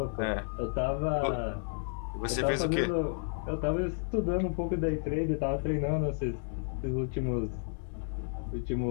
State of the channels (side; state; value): right; silent; digital silence